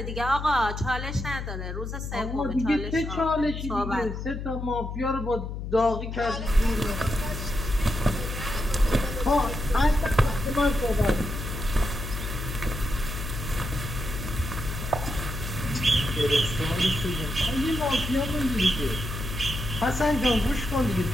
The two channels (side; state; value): left; noise; hum, 6 dB below the sound